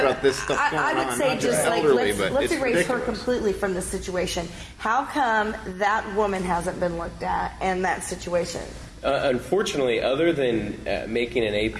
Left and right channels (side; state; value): both; identical; correlation 1.00